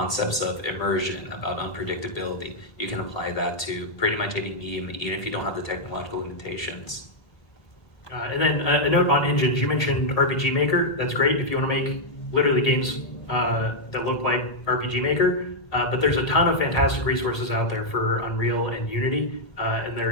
of immersion, about unpredictability, you can apply that to pretty much any medium, even if you don't have the technological limitations. And then a note on engines, you mentioned RPG Maker. That's great if you want to make literally games that look like RPG Maker. But there's a ton of fantastic resources out there for Unreal and Unity, and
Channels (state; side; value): late; right; 1.8 ms